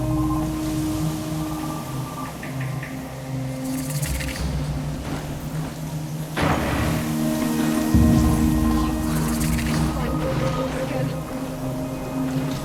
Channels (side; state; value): both; identical; correlation 1.00